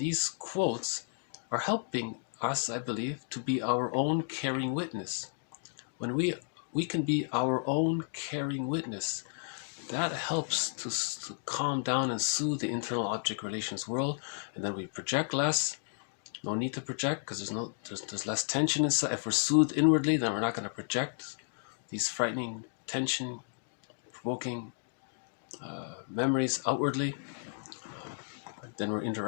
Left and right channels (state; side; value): silent; right; digital silence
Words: quotes are helping us, I believe, to be our own caring witness. When we can be our own caring witness, that helps to calm down and soothe the internal object relations world, and then we project less. No need to project because there's less tension inside. If we're soothed inwardly, then we're not going to project these frightening, tension, provoking memories outwardly. Then we're